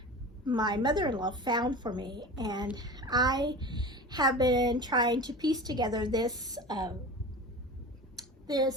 my mother-in-law found for me, and I have been trying to piece together this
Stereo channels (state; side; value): normal; both; correlation 0.33